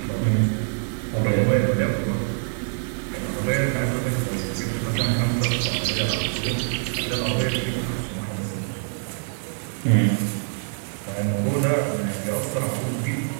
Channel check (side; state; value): left; silent; 61 dB below the other